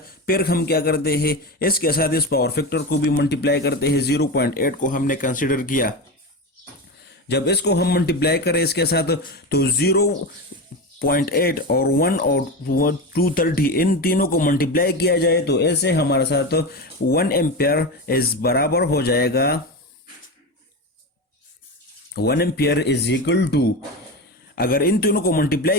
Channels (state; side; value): normal; both; correlation 0.21